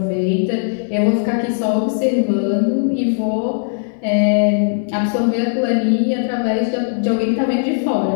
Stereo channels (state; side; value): silent; right; digital silence